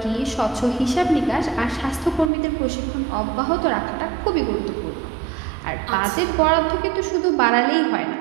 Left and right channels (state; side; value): drops out; left; at 2.3 s